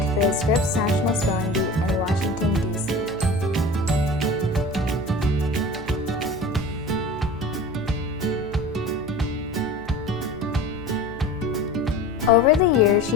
the Scripps National Spelling Bee in Washington, D.C. Over the years,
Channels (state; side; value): normal; both; correlation 0.36